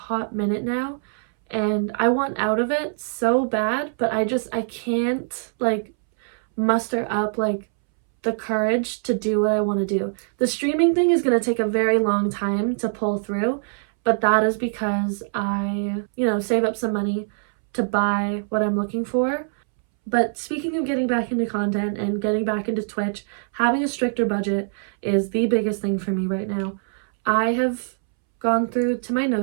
minute now, and I want out of it so bad, but I can't like muster up like the courage to do what I want to do. The streaming thing is going to take a very long time to pull through, but that is because I, save up some money to buy what I'm looking for. But speaking of getting back into content and getting back into Twitch, having a stricter budget is the biggest thing for me right now. I have gone through to my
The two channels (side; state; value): left; silent; 63 dB below the other